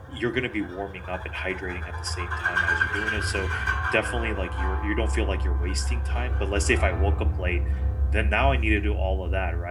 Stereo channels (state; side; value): identical; both; correlation 1.00